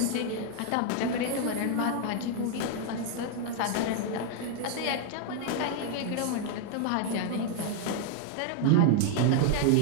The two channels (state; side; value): different; both; correlation 0.00